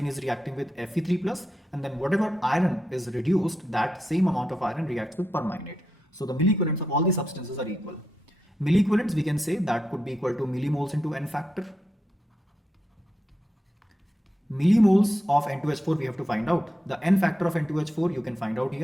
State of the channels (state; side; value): normal; both; correlation 0.85